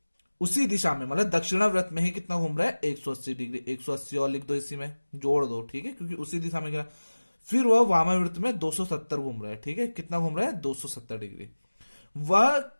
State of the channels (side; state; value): both; inverted; correlation -1.00